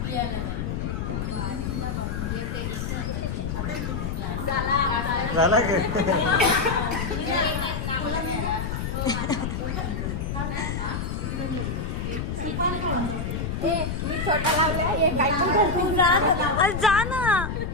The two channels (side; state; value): left; noise; rumble, 3 dB below the sound